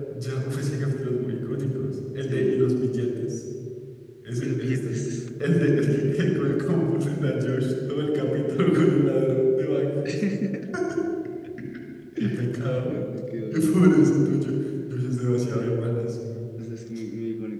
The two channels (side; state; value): both; identical; correlation 1.00